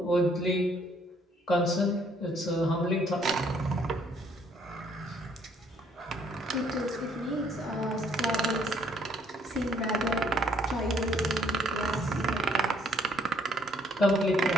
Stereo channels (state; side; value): normal; both; correlation 0.65